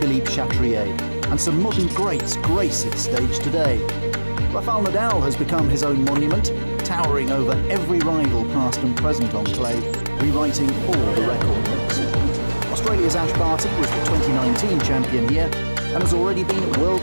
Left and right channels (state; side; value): inverted; both; correlation -1.00